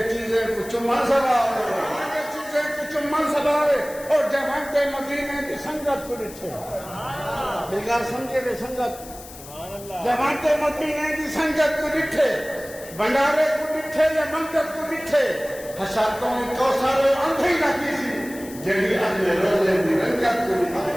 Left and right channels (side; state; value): left; noise; hiss, 17 dB below the sound